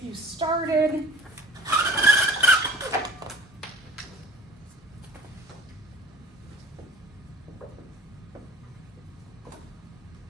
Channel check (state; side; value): normal; both; correlation 0.47